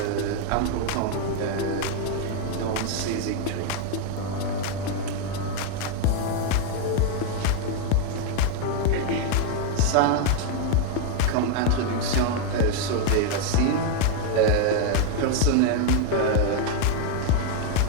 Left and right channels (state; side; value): different; both; correlation 0.00